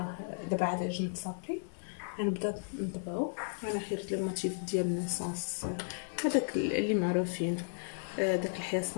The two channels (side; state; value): right; silent; digital silence